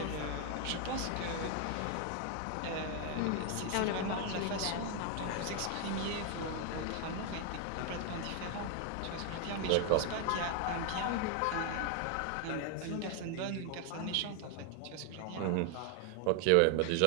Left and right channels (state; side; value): different; both; correlation 0.00